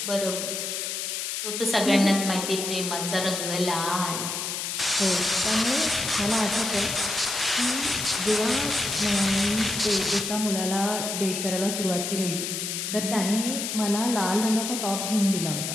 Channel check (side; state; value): left; noise; hiss, 3 dB below the sound